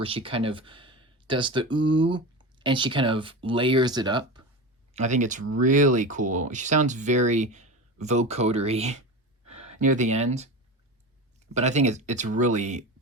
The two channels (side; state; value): both; normal; correlation 0.26